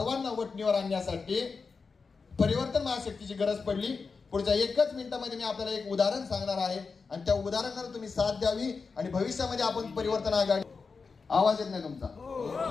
वटणीवर आणण्यासाठी परिवर्तन महाशक्तीची गरज पडली. पुढच्या 1 मिनिटामध्ये मी आपल्याला एक उदाहरण सांगणार आहे आणि त्या उदाहरणाला तुम्ही साथ द्यावी आणि भविष्यामध्ये आपण परिवर्तन आघाडी. आवाज येत नाही तुमचा?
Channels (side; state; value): right; quieter; 4.8 dB